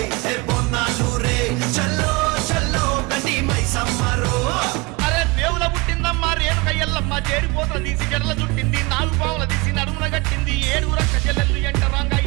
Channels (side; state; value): left; quieter; 25.4 dB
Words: హే బోనాలు రే చల్లో